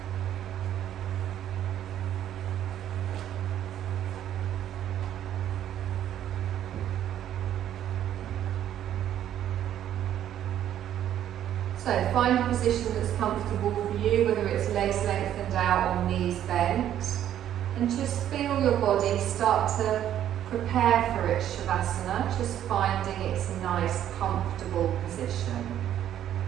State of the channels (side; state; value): left; quieter; 11.0 dB